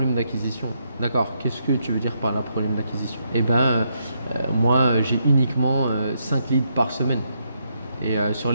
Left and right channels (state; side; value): inverted; both; correlation -0.78